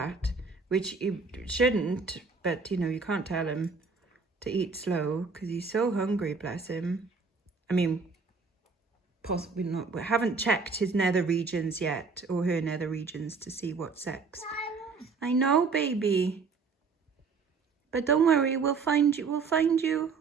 which he shouldn't, but you know, you can't tell him to eat slow because he's so hungry, bless him. I mean, possibly not, we haven't checked his nether regions yet, or her nether regions, to see what sex. I know, baby. But don't worry, we'll find you,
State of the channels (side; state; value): left; quieter; 4.8 dB